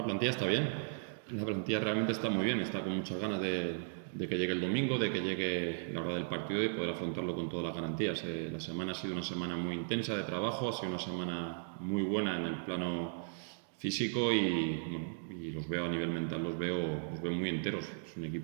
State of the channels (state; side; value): silent; left; digital silence